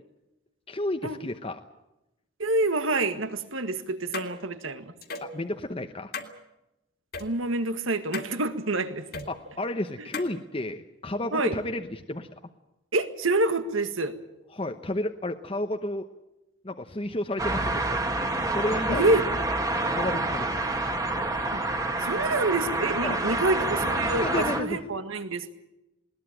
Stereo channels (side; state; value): both; normal; correlation 0.19